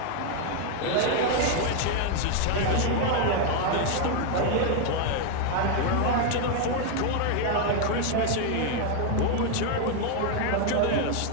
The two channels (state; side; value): different; both; correlation 0.00